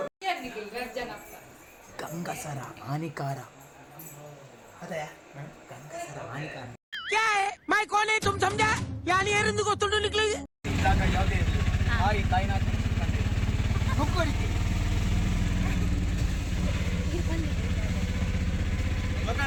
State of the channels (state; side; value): identical; both; correlation 1.00